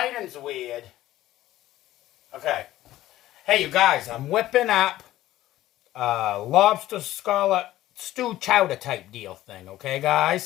weird. Okay. Hey, you guys, I'm whipping up lobster scallop stew chowder type deal thing, okay,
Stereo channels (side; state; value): right; quieter; 14.9 dB